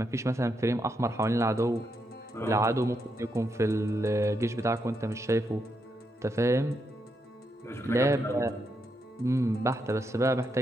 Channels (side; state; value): both; normal; correlation 0.81